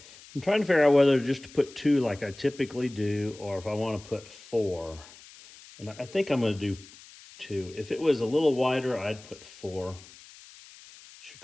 I'm trying to figure out whether just to put 2 like I typically do, or if I want to put 4. And I think I'm going to do 2. If it was a little wider, I'd put 4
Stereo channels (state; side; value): noise; left; hiss, 21 dB below the sound